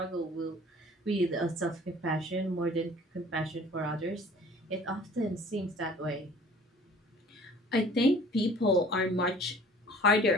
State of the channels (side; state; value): both; normal; correlation 0.49